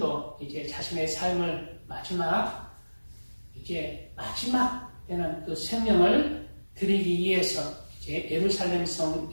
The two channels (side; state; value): both; inverted; correlation -1.00